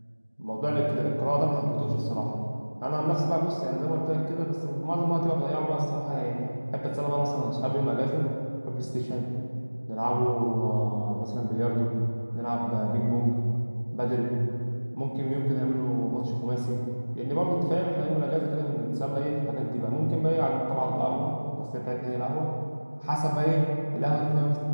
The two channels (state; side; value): inverted; both; correlation -1.00